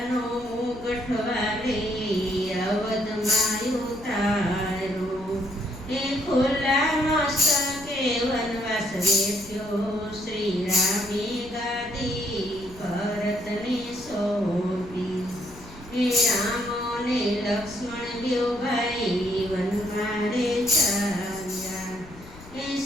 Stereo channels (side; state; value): left; noise; rumble, 19 dB below the sound